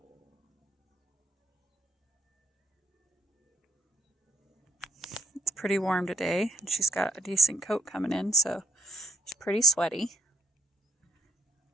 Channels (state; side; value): normal; both; correlation 0.66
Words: It's pretty warm today, and she's got a decent coat coming in, so she's pretty sweaty.